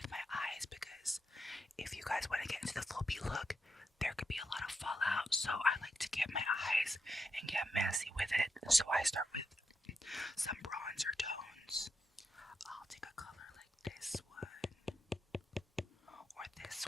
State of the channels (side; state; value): both; normal; correlation 0.85